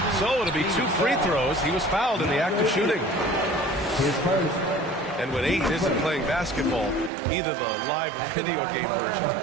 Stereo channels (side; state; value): left; drops out; at 7.1 s